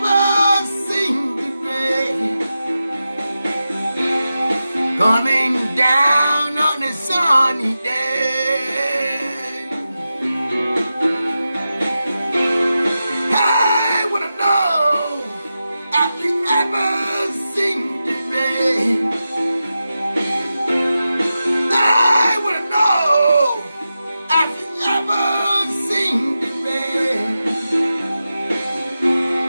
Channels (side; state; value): both; inverted; correlation -0.91